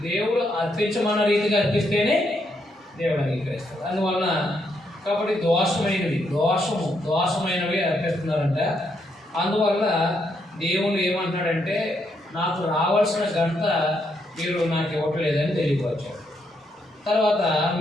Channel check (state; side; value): normal; both; correlation 0.77